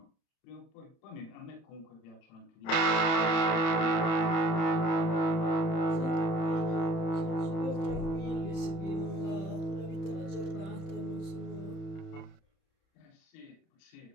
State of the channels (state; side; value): late; right; 31 ms